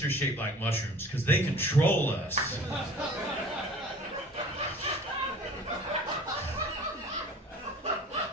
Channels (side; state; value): both; normal; correlation 0.46